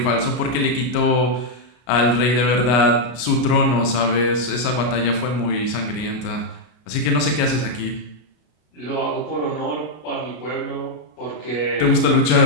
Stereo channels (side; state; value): right; late; 33 ms